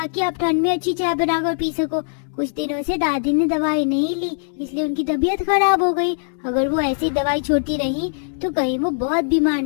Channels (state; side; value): silent; right; digital silence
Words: आप ठंड में अच्छी चाय बनाकर पी सको। कुछ दिनों से दादी ने दवाई नहीं ली, इसलिए उनकी तबीयत खराब हो गई। अगर वो ऐसी दवाई छोड़ती रही तो कहीं वो बहुत बीमार